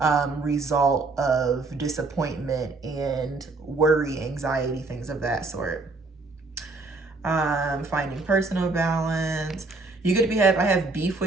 result of disappointment and worry, anxiety, things of that sort. Finding personal balance. You could I have beef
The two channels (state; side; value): quieter; left; 3.6 dB